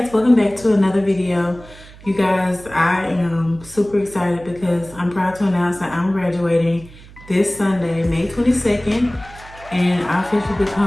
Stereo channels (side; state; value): right; noise; hum, 20 dB below the sound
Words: welcome back to another video. You guys, I am super excited because I'm proud to announce that I'm graduating this Sunday, May 22nd, and I officially